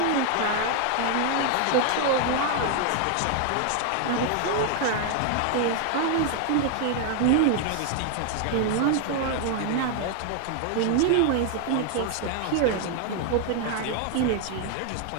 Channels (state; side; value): different; both; correlation 0.00